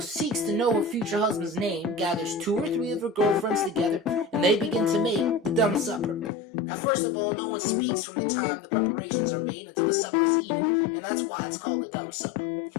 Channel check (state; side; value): drops out; right; at 6.3 s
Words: seeks to know her future husband's name gathers 2 or 3 of her girlfriends together, and they begin to make the dumb supper. Now, first of all, no one speaks from the time the preparations are made until the supper is eaten, and that's why it's called a dumb supper.